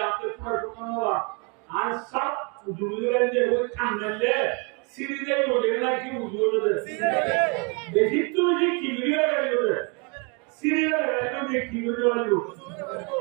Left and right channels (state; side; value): quieter; left; 33.8 dB